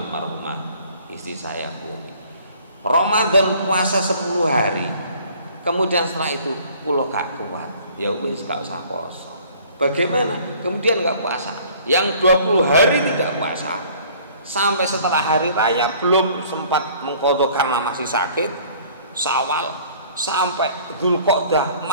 istri saya unik Ramadan puasa 10 hari, kemudian setelah itu pulau gak kuat, ya wis gak usah puasa. Bagaimana? Kemudian gak puasa, Yang 20 hari tidak puasa, sampai setelah hari raya belum sempat mengqadha karena masih sakit, Syawal sampai Dzulqa'dah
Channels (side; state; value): both; inverted; correlation -0.54